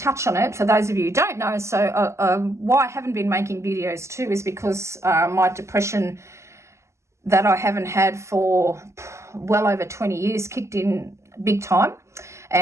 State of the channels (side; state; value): left; late; 0.13 ms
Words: touch on it for those of you who don't know. So why I haven't been making videos too is because my depression that I haven't had for well over 20 years kicked in big time,